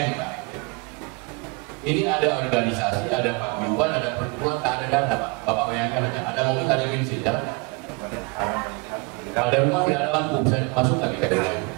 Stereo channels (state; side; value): quieter; left; 29.5 dB